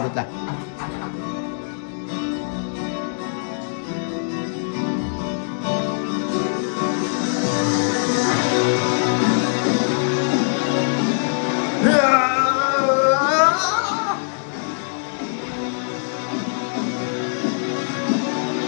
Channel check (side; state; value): right; silent; digital silence